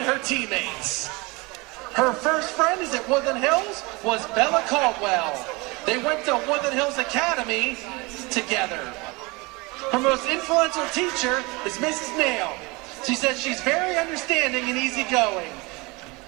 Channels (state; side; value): quieter; left; 25.6 dB